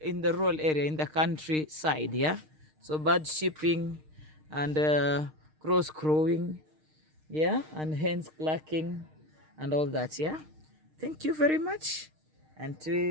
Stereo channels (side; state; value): left; late; 6.5 ms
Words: the rural area, in the countryside. Yeah, So bird shipping and crows crowing, yeah, and hens clucking and all that, yeah. Thank you very much.